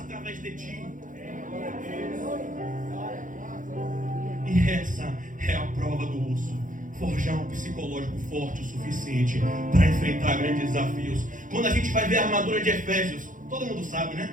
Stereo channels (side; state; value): left; late; 0.38 ms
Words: através de ti. E essa é a prova do urso. Forjar um psicológico forte o suficiente para enfrentar grandes desafios. Quando a gente vai ver a armadura de Efésios, todo mundo sabe,